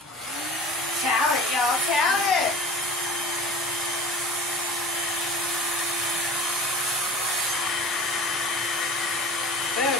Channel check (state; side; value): normal; both; correlation 0.38